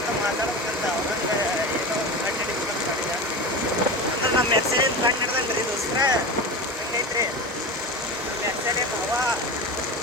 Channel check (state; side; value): normal; both; correlation 0.27